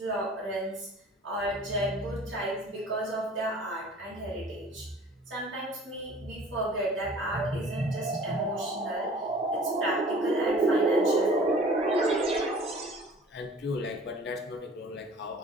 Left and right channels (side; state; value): both; normal; correlation 0.48